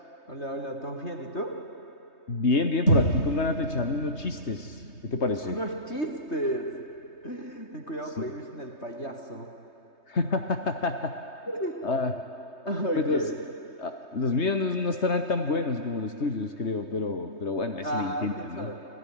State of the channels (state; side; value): late; right; 3.2 ms